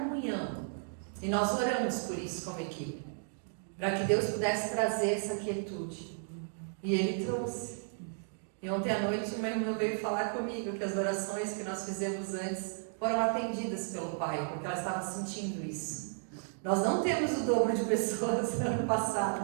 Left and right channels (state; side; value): silent; left; digital silence